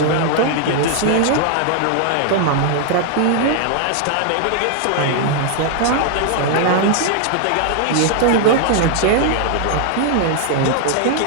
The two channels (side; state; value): both; different; correlation 0.00